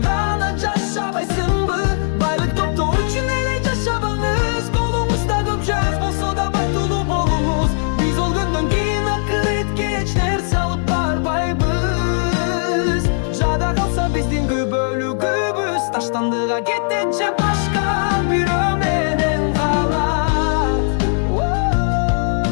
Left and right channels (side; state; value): right; silent; 60 dB below the other